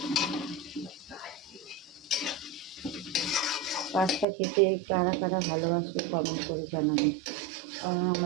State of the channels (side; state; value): left; drops out; at 4.2 s